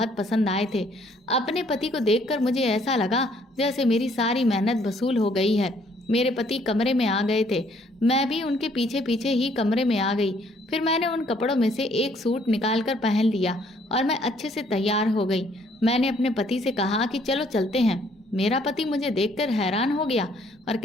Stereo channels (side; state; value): both; normal; correlation 0.64